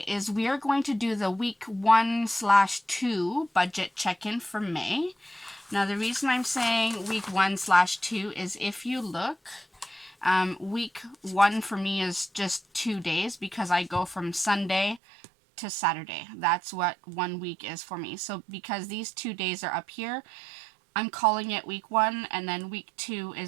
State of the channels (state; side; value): drops out; left; at 15.0 s